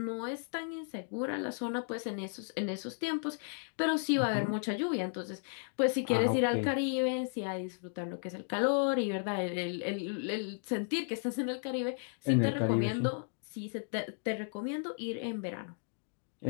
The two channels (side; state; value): right; silent; 55 dB below the other